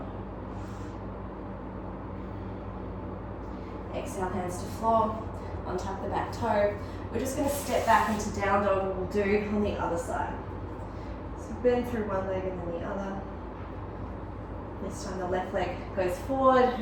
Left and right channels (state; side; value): identical; both; correlation 1.00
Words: Exhale, hands to floor. Untuck the back toe. We're just going to step back into down dog, and we'll do on the other side. So bend through one leg and then the other. This time the left leg goes forward,